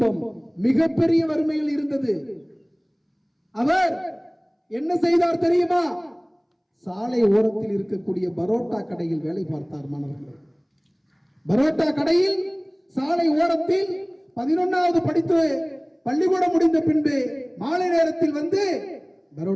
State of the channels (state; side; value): identical; both; correlation 1.00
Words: மிகப்பெரிய வறுமையில் இருந்தது. அவர் என்ன செய்தார் தெரியுமா? சாலை ஓரத்தில் இருக்கக்கூடிய பரோட்டா கடையில் வேலை பார்த்தார். மாணவர்கள், பரோட்டா கடையில் சாலை ஓரத்தில் 11வது படித்து பள்ளிக்கூடம் முடிந்த பின்பு மாலை நேரத்தில் வந்து